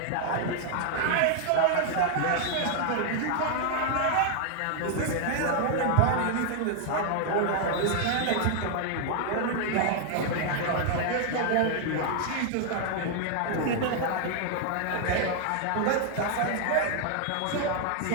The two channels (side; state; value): both; different; correlation 0.00